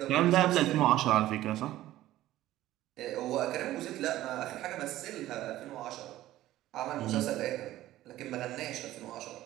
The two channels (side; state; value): left; quieter; 14.8 dB